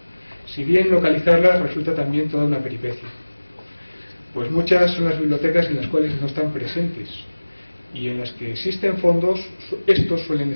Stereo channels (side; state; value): both; inverted; correlation -1.00